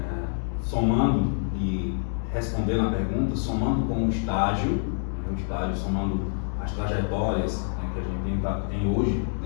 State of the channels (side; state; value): right; silent; digital silence